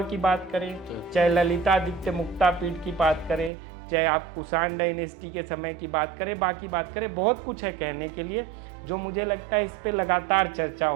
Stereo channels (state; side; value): drops out; left; at 3.5 s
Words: की बात करें, चाहे ललितादित्य मुक्तापीठ की बात करें, चाहे आप कुषाण डायनेस्टी के समय की बात करें, बाकी बात करें, बहुत कुछ है कहने के लिए, जो मुझे लगता है इस पे लगातार चर्चा